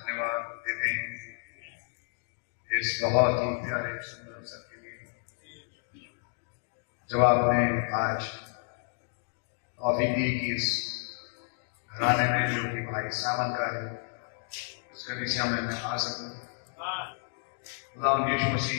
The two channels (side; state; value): right; silent; 57 dB below the other